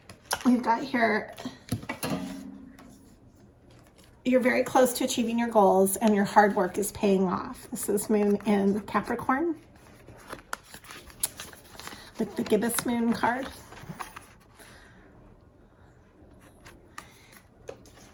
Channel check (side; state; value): both; identical; correlation 1.00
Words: We've got here, you're very close to achieving your goals and your hard work is paying off. This is moon in Capricorn with the gibbous moon card.